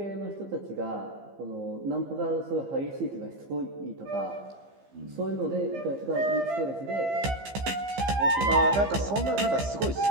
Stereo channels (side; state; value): left; late; 15 ms